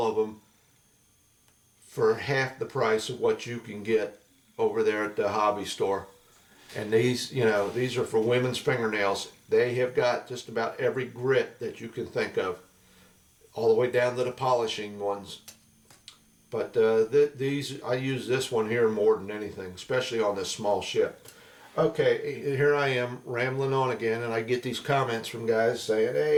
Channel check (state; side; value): identical; both; correlation 1.00